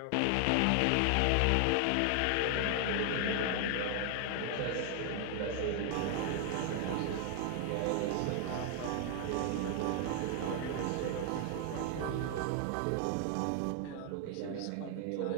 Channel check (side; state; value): both; different; correlation 0.00